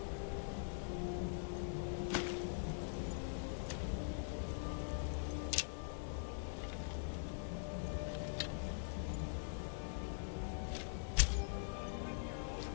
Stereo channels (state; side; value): silent; right; digital silence